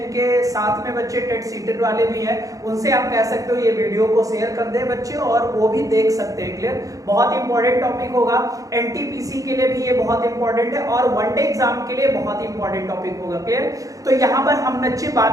साथ में बच्चे टेट सीटेट वाले भी हैं उनसे आप कह सकते हो ये वीडियो को शेयर कर दे बच्चे, और वो भी देख सकते हैं। क्लियर, बहुत इंपॉर्टेंट टॉपिक होगा। एनटीपीसी के लिए भी ये बहुत इंपॉर्टेंट है और वनडे एग्जाम के लिए बहुत इंपॉर्टेंट टॉपिक होगा। क्लियर, तो यहाँ पर हम बच्चे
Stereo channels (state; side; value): late; left; 0.16 ms